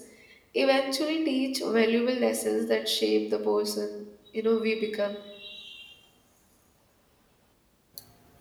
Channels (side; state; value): both; identical; correlation 1.00